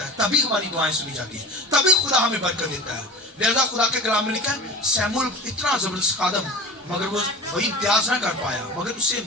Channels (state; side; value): normal; both; correlation 0.35